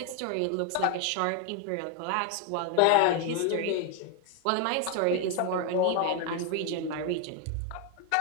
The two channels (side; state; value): both; different; correlation 0.01